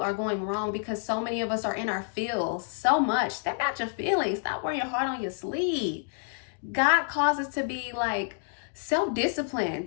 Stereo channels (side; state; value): right; silent; 59 dB below the other